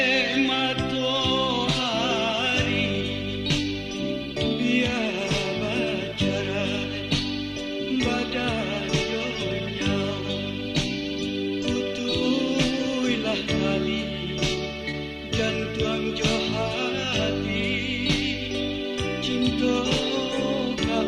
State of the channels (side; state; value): both; identical; correlation 1.00